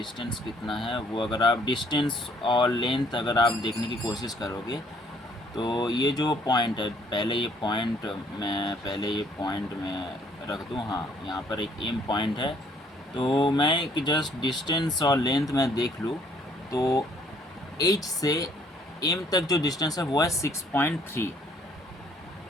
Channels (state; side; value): normal; both; correlation 0.63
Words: है, वो अगर आप डिस्टेंस और लेंथ अगर आप देखने की कोशिश करोगे तो ये जो पॉइंट है, पहले ये पॉइंट मैं रख दूँ। हाँ, यहाँ पर एक एम पॉइंट है, तो मैं एक जस्ट डिस्टेंस और लेंथ में देख लूँ तो एच से एम तक जो डिस्टेंस है वो है 6.3,